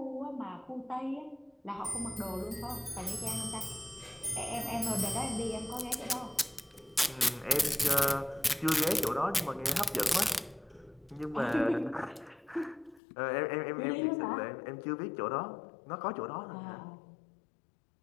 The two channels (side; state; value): right; drops out; at 13.0 s